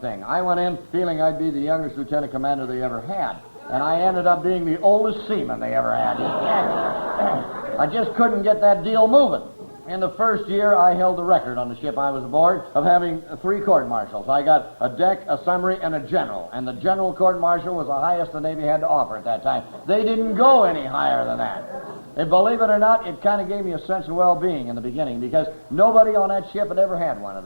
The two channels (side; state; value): both; inverted; correlation -1.00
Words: I went in feeling I'd be the youngest lieutenant commander they ever had, and I ended up being the oldest seaman they ever had. I just couldn't get that deal moving. In the first year, I held the record on the ship I was aboard of having 3 court-martials. I got a deck, a summary, and a general. And the general court-martial was the highest the Navy had to offer at that time. They didn't go any higher than that. And believe it or not, it kind of gave me a sense of well-being in the beginning, because nobody on that ship had ever had one of